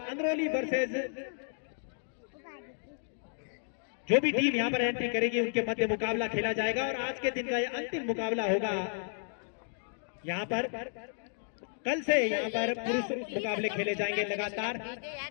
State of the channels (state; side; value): silent; right; digital silence